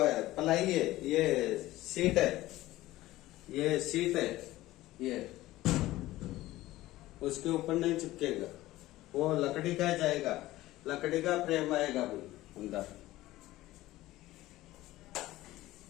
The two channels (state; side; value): quieter; right; 16.7 dB